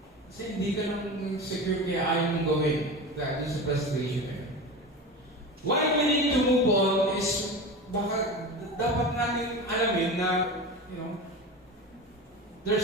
Kasi hindi ka ng secure kaya ayaw mong gawin. That is frustration. Why we need to move on is baka dapat natin alamin na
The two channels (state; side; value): normal; both; correlation 0.28